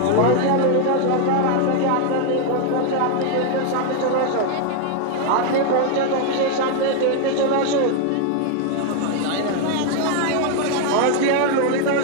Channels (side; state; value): both; different; correlation 0.00